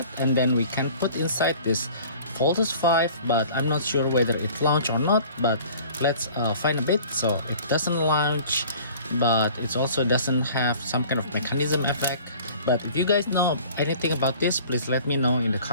and then we can put inside this Voltes V, but I'm not sure whether it launch or not, but let's find a bit. So it doesn't launch, but it also doesn't have some kind of mechanism effect. But if you guys know anything about this, please let me know in the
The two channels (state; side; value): inverted; both; correlation -0.48